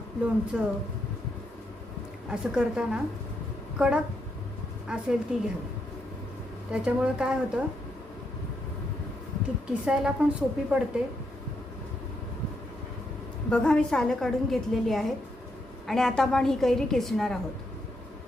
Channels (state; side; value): normal; both; correlation 0.79